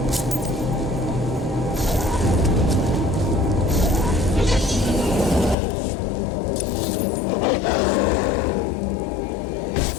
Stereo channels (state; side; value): drops out; right; at 5.6 s